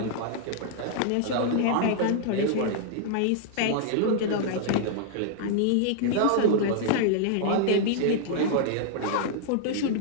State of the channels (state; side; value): different; both; correlation -0.01